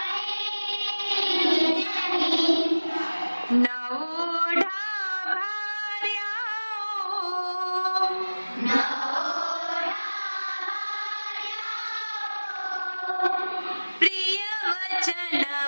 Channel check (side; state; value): both; inverted; correlation -1.00